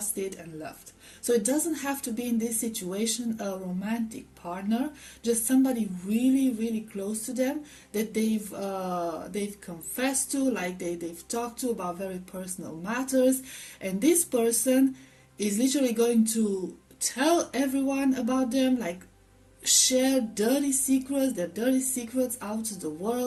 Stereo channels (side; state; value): both; identical; correlation 1.00